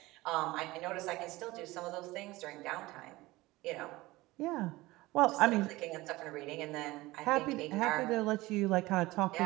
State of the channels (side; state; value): left; quieter; 19.6 dB